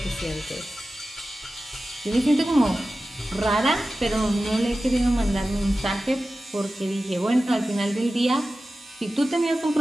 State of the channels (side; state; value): both; normal; correlation 0.94